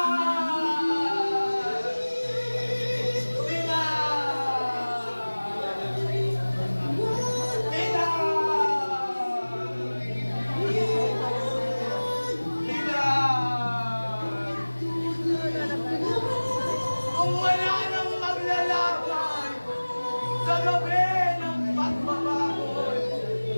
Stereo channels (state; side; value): inverted; both; correlation -1.00